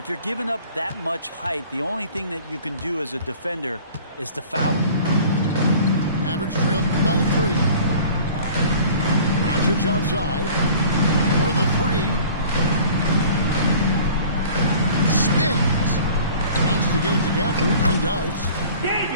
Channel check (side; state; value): both; inverted; correlation -0.47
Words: you're giving up that much height, the only thing that you can do as a defender is to foul him. Mavericks trailed by 3. Doncic outside for the 3. Spins. Wants to get it to Gafford and does.